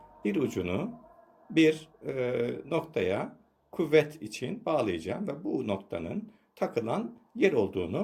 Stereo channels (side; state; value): both; identical; correlation 1.00